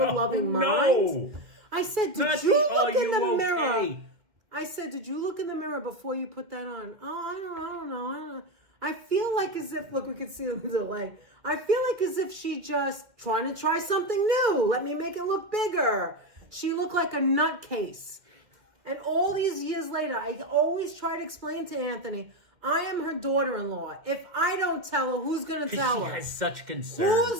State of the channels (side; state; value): left; late; 2.0 ms